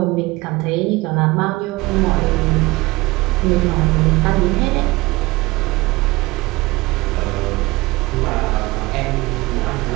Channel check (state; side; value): quieter; left; 21.9 dB